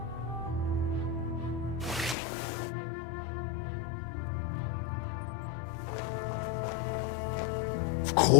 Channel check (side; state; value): right; drops out; at 2.1 s